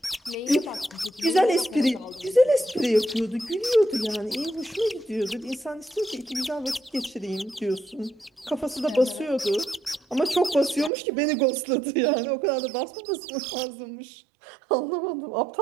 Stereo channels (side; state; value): left; drops out; at 10.9 s